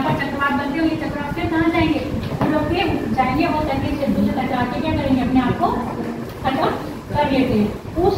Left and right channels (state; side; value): identical; both; correlation 1.00